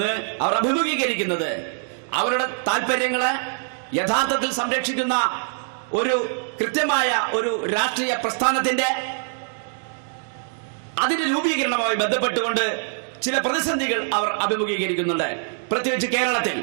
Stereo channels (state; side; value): silent; left; digital silence